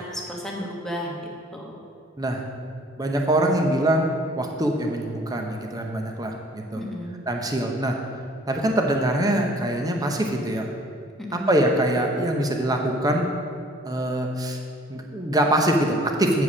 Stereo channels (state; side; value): normal; both; correlation 0.55